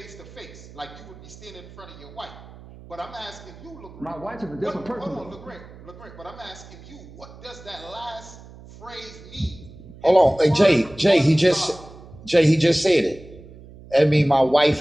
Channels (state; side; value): noise; right; hum, 19 dB below the sound